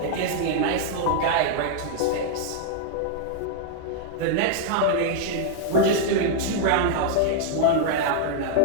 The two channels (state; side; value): different; both; correlation -0.01